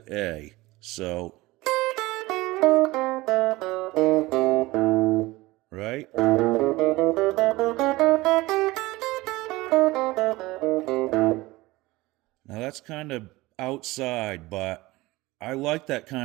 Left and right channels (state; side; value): quieter; left; 20.2 dB